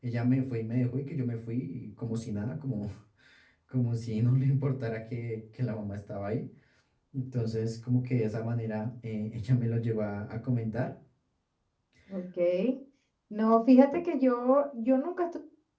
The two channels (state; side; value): identical; both; correlation 1.00